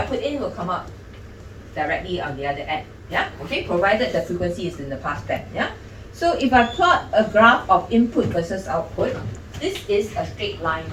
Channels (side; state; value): both; identical; correlation 1.00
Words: put in will come out directly on the other end. Yeah, okay, provided the frequency is in the pass band. Yeah, so if I plot a graph of input versus output, this is a straight line